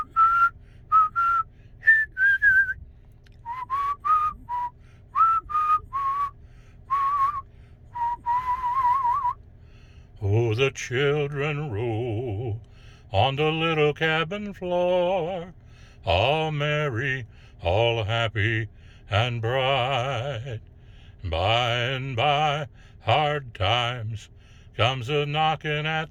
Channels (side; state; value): both; identical; correlation 1.00